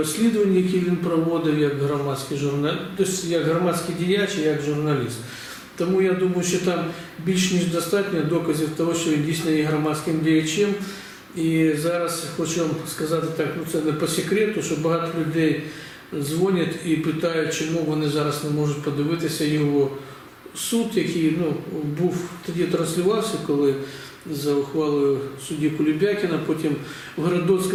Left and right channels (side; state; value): both; identical; correlation 1.00